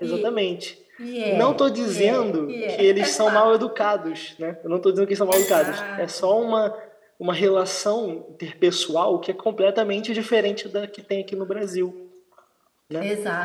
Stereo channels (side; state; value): both; identical; correlation 1.00